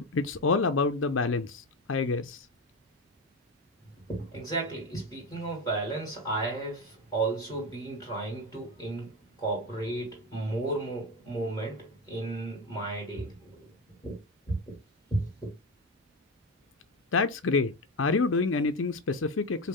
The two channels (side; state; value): both; normal; correlation 0.18